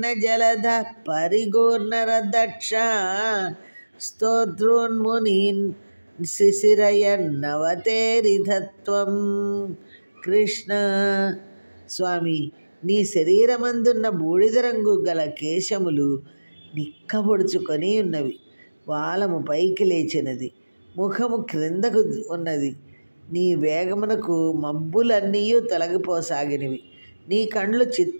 జలధ పరిగూర్ణరదక్ష స్తోత్రోన్మునీన్ శిశిరయన్నవతేరిధత్వం. కృష్ణ స్వామి, నీ శరీరమందున్న బూడిద రంగు గల కేశములు నిక్కబొడుచుకొని ఉన్నవి. వాలము పైకి లేచినది, ముఖము క్రిందకు ఉన్నది. నీ వేగమునకు మబ్బులన్నీ తొలగిపోసాగినవి. నీ కండ్లు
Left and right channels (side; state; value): both; inverted; correlation -1.00